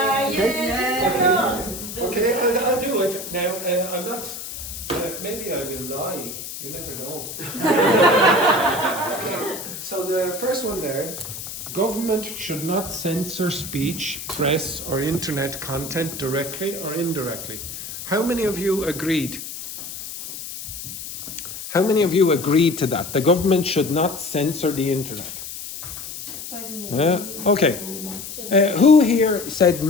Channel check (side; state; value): left; noise; hiss, 9 dB below the sound